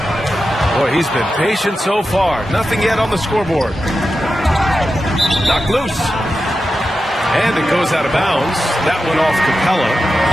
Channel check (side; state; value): both; normal; correlation 0.91